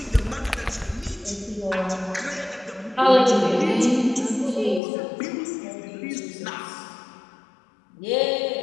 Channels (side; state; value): right; drops out; at 4.8 s